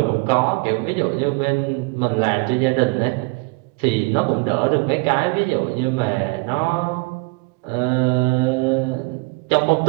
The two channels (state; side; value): quieter; left; 28.7 dB